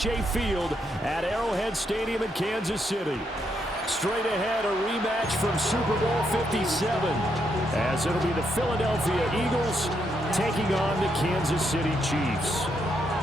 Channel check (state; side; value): normal; both; correlation 0.78